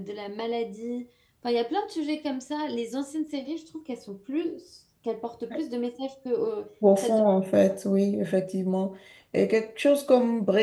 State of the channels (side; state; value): both; identical; correlation 1.00